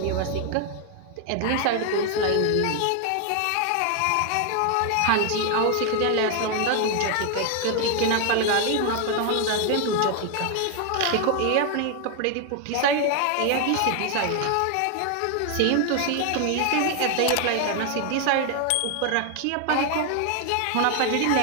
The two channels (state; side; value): different; both; correlation 0.01